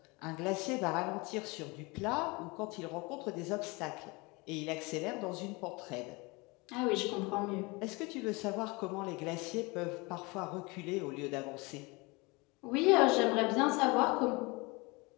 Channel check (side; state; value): right; quieter; 26.0 dB